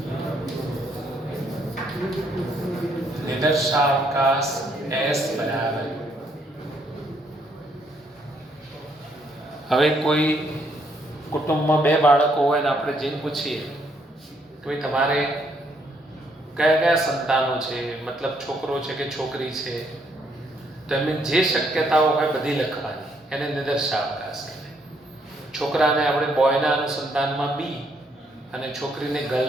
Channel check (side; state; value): both; normal; correlation 0.71